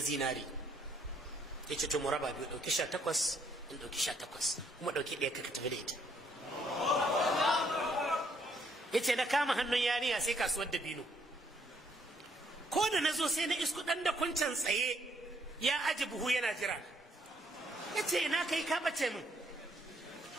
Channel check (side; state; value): both; normal; correlation 0.69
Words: yace to mu raba biyu dauki 18 in dauki 18 kuma dauki ɗaya ka tafi da ita yace na kama hannun yariya sai kasuwar dabino ko da nazo sai na isku dan da kuncan tsaye ya aji buhu yana jira yace ina kai ka bace min